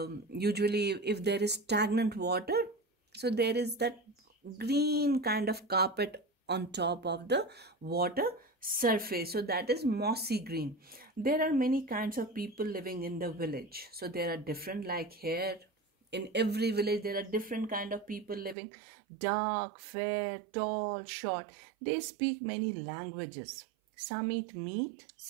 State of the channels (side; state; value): left; drops out; at 18.6 s